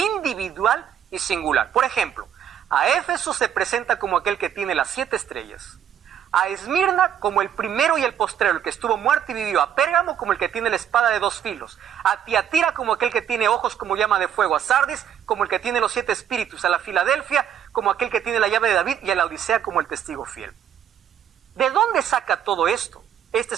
y singular. Por ejemplo, a Éfeso se presenta como aquel que tiene las 7 estrellas. A Esmirna como el primero y el postrero, el que estuvo muerto y vivió. A Pérgamo como el que tiene la espada de 2 filos. A Tiatira como aquel que tiene ojos como llama de fuego. A Sardis como el que tiene los 7 espíritus. A la Filadelfia como aquel que tiene la llave de David. Y a la Odisea como el testigo fiel. ¿De dónde saca todo esto?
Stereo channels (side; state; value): left; quieter; 9.4 dB